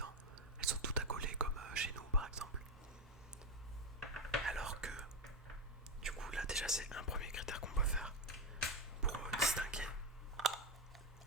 Elles sont toutes accolées comme chez nous par exemple. Alors que du coup là déjà c'est un premier critère qu'on peut faire pour distinguer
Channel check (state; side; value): normal; both; correlation 0.11